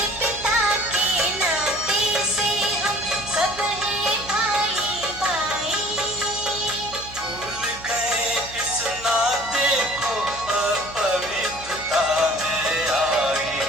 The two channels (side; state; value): right; noise; hum, 17 dB below the sound